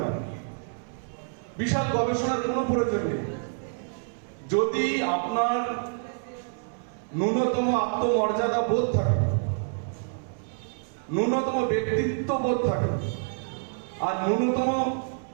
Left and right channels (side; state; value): left; silent; 60 dB below the other